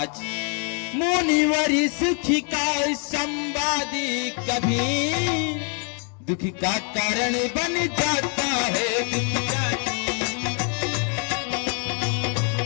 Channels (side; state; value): right; quieter; 39.8 dB